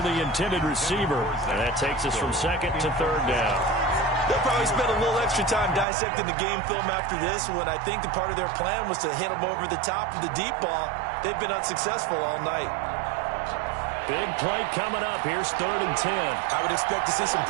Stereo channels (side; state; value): left; drops out; at 5.9 s